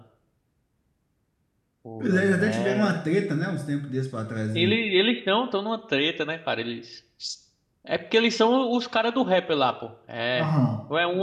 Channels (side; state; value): both; identical; correlation 1.00